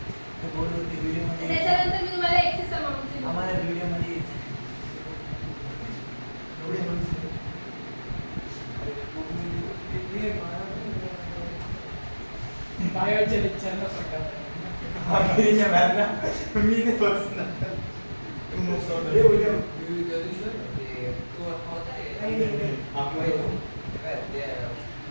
बोर्डवरती व्हिडिओमध्ये त्याच्यानंतर मी तुम्हाला एक्सेस अमाउंट दिली. आम्हाला व्हिडिओमध्ये बायोच्या लेक्चरला पटकन. आखिरीच्या मॅमला मी नाही बसणार. तू मस्त होता. हे उद्या.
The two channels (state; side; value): inverted; both; correlation -1.00